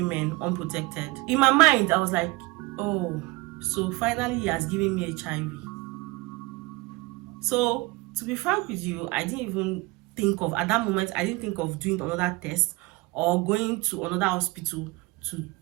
unprotected. In my mind, I was like, oh, so finally he has given me HIV. So to be frank with you, I didn't even think of, at that moment, I didn't think of doing another test or going to another hospital to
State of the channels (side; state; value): left; quieter; 22.9 dB